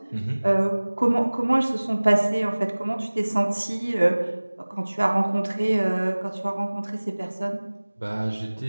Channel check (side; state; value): both; inverted; correlation -1.00